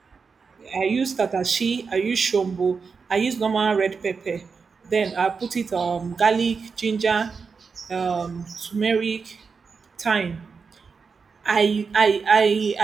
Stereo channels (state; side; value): quieter; left; 5.2 dB